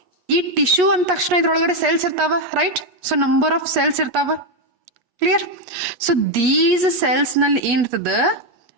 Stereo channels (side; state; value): left; late; 8.3 ms